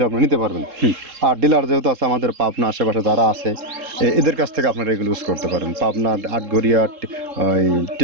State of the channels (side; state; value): left; late; 3.7 ms